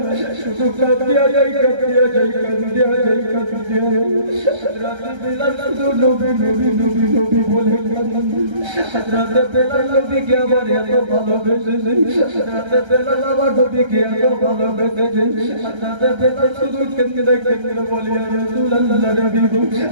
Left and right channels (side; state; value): left; late; 1.3 ms